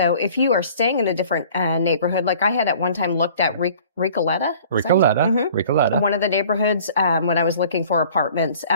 if you are staying in a different neighborhood, like I had at one time looked at Recoleta. Recoleta. One of the neighborhoods when I was looking for apartments.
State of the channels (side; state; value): both; inverted; correlation -0.51